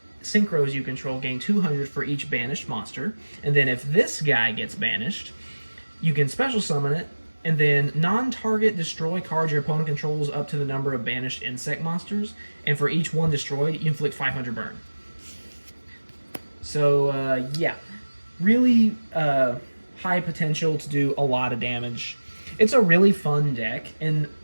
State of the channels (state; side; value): inverted; both; correlation -1.00